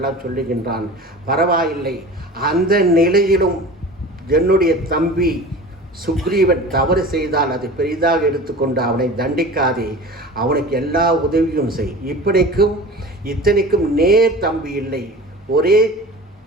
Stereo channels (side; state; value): both; normal; correlation 0.37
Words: சொல்லுகின்றான். பரவாயில்லை, அந்த நிலையிலும் என்னுடைய தம்பி சுக்ரீவன் தவறு செய்தால் அதை பெரிதாக எடுத்துக்கொண்டு அவனை தண்டிக்காதே, அவனுக்கு எல்லா உதவியும் செய். இத்தனைக்கும் நேர் தம்பி இல்லை, ஒரே